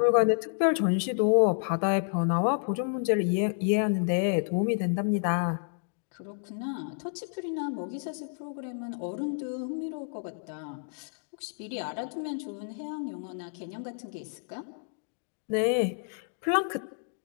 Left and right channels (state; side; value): silent; right; digital silence